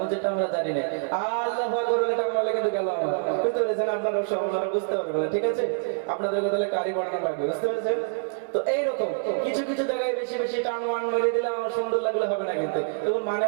যেটা আমরা জানি না। আল্লাহু আকবার বলে বলে কিন্তু গেল আমার, বুঝতে পেরেছেন? আপনারা বুঝতে পারবেন না, ঠিক আছে? আপনাদেরকে তাহলে কারি পড়ানো লাগবে, বুঝতে পেরেছেন? তো এইরকম কিছু কিছু জায়গায় বেশি বেশি টান ওয়ান মেরে দিলে আমার সুন্দর লাগলে হবে না, কিন্তু তখন মানে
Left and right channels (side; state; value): left; silent; digital silence